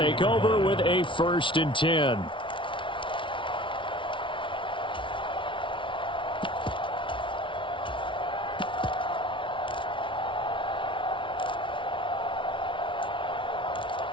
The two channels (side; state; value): right; late; 0.25 ms